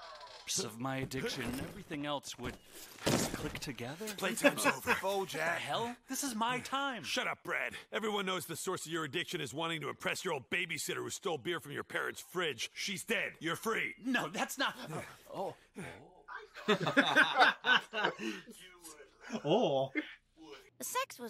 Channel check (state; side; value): identical; both; correlation 1.00